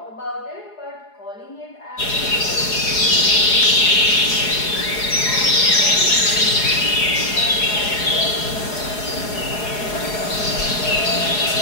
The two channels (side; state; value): right; late; 4.8 ms